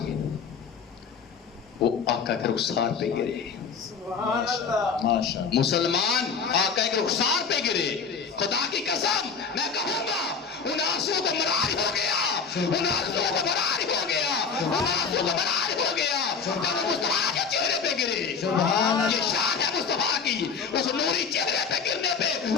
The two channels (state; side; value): quieter; right; 5.8 dB